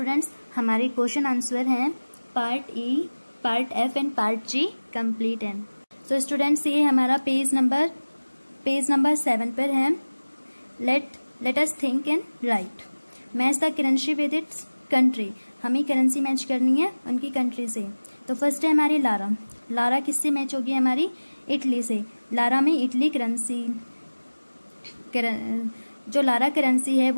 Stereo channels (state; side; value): inverted; both; correlation -1.00